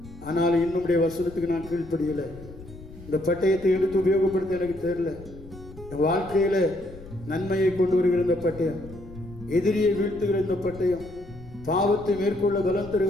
ஆனால் இன்னும் வசனத்துக்கு நான் கீழ்ப்படியலை. இந்த பட்டயத்தை எடுத்து உபயோகப்படுத்த எனக்கு தெரியல. என் வாழ்க்கையில நன்மையை கொண்டு வருகிற இந்த பட்டயம், எதிரியை வீழ்த்துகிற இந்த பட்டயம், பாவத்தை மேற்கொள்ள பலம்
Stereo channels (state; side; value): noise; left; rumble, 17 dB below the sound